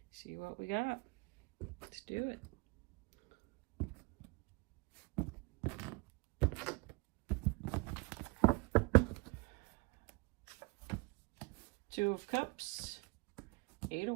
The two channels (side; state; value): left; quieter; 28.1 dB